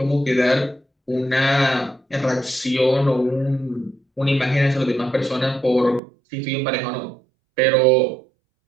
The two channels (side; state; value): left; drops out; at 6.0 s